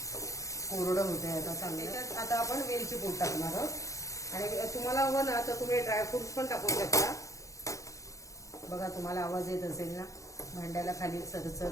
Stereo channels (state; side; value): late; right; 0.15 ms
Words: कोरडं होतंय आता चांगलं. आता आपण वेलची पूड टाकणार आहोत. आणि तुम्हाला हवं ना तर तुम्ही ड्रायफ्रुट्स पण टाकू शकता. बघा तुम्हाला आवाज येत असेल ना, भांड्याला खाली